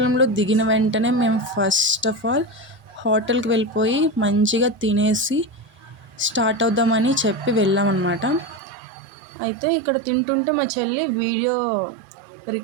దిగిన వెంటనే మేము ఫస్ట్ ఆఫ్ ఆల్ హోటల్కి వెళ్ళిపోయి మంచిగా తినేసి స్టార్ట్ అవుదామని చెప్పి వెళ్ళామన్నమాట. అయితే ఇక్కడ తింటుంటే మా చెల్లి వీడియో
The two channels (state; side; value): drops out; left; at 8.6 s